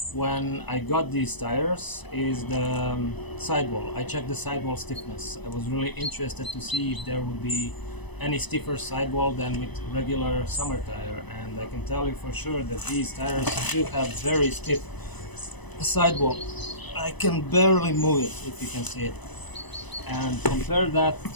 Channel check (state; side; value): late; right; 1.0 ms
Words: when I got these tires is the sidewall. I checked the sidewall stiffness. I was really interested to see if there would be any stiffer sidewall than with regular summer tire, and I can tell you for sure that these tires do have very stiff sidewall. I can barely move it, if you can see it, and compare that